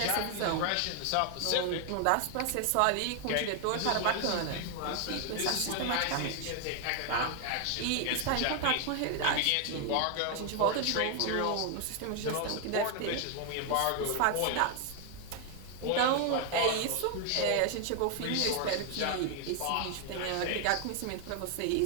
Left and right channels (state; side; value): different; both; correlation 0.00